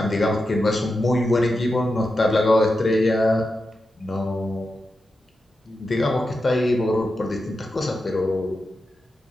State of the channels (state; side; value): normal; both; correlation 0.89